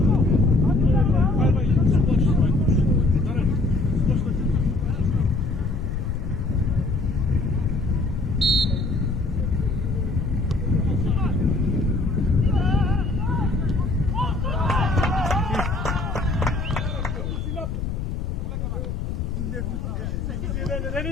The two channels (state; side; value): noise; left; rumble, 4 dB below the sound